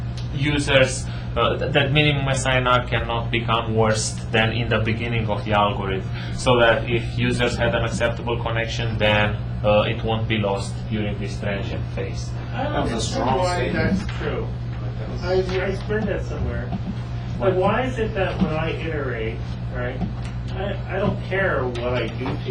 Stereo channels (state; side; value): identical; both; correlation 1.00